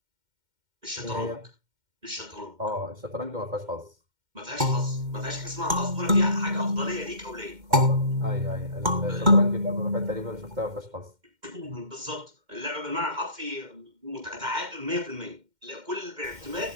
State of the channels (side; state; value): left; late; 2.1 ms